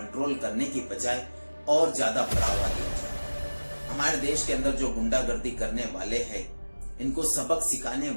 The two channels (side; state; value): both; inverted; correlation -1.00